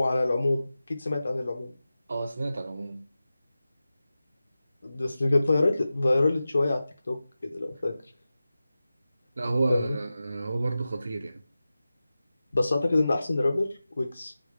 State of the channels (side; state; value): both; inverted; correlation -0.94